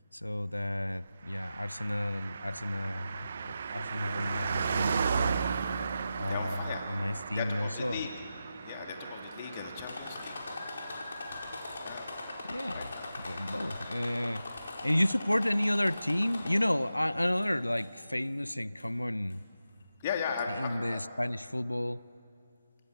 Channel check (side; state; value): both; inverted; correlation -0.91